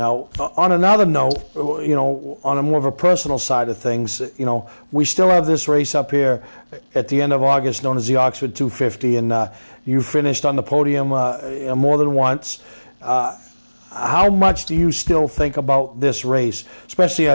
on another note, on a more of a personal side of things, we still have this race up here at the end of August known as the Oxford 250, and you finished on the podium more than once. How much do you still think about this race, especially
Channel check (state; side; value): inverted; both; correlation -1.00